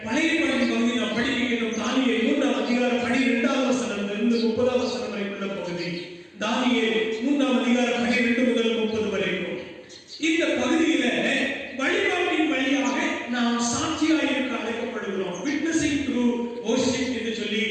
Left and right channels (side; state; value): both; identical; correlation 1.00